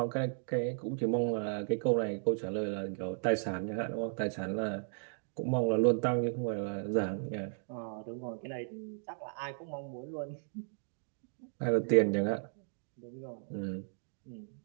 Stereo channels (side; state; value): left; silent; digital silence